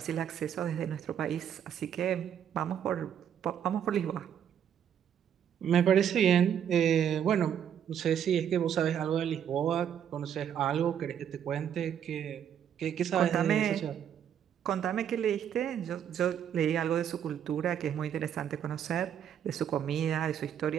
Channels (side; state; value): left; quieter; 9.0 dB